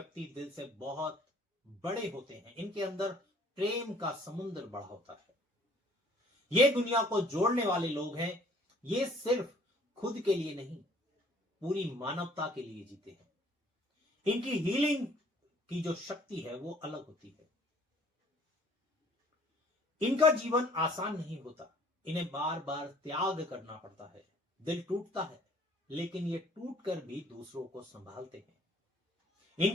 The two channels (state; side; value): normal; both; correlation 0.56